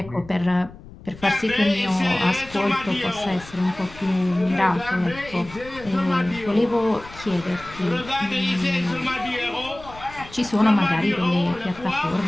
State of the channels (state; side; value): noise; left; rumble, 18 dB below the sound